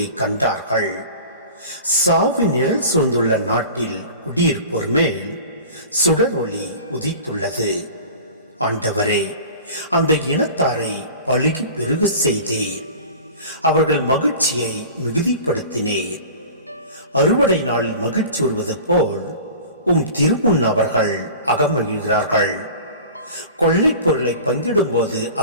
கண்டார்கள். சாவின் நிழல் சூழ்ந்துள்ள நாட்டில் குடியிருப்போர் மேல் சுடர் ஒளி உதித்துள்ளது. ஆண்டவரே, அந்த இனத்தாரை பலுகி பெருக செய்தீர். அவர்கள் மகிழ்ச்சியை மிகுதிப்படுத்தினீர். அறுவடை நாளில் மகிழ்ச்சி வருவது போல் திருமுன் அவர்கள் அகமகிழ்கிறார்கள். கொள்ளை பொருளை பங்கிடும் போது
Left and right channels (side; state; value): both; inverted; correlation -0.39